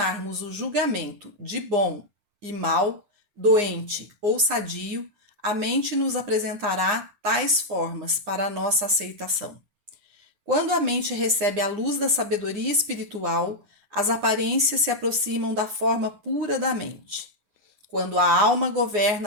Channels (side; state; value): left; late; 9.7 ms